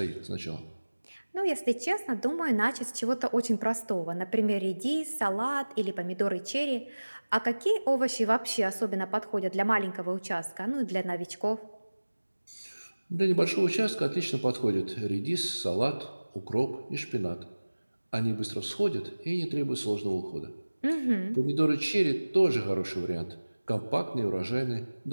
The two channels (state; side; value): inverted; both; correlation -1.00